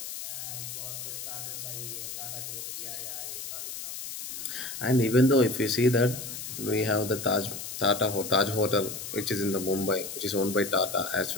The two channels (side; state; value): left; noise; hiss, 8 dB below the sound